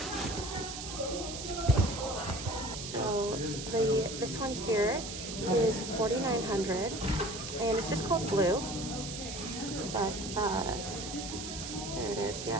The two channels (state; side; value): noise; right; hiss, 7 dB below the sound